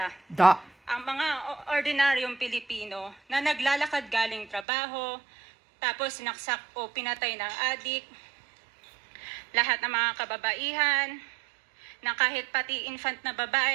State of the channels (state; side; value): drops out; left; at 4.7 s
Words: Ang mga ordinaryong Pilipino na naglalakad galing trabaho, tapos sinaksak o pinatay ng adik, lahat ng mga kababaihan, na kahit pati infant na